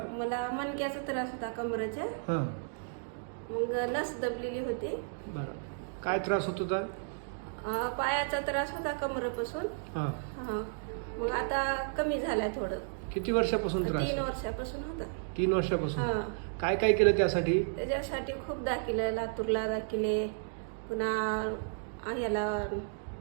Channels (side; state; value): left; silent; digital silence